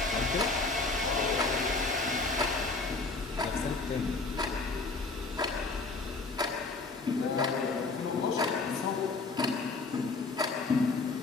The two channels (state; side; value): quieter; right; 3.7 dB